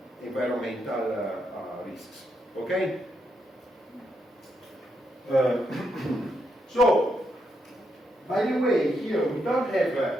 environmental risks. Okay? So, by the way, here we don't have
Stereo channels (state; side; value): normal; both; correlation 0.80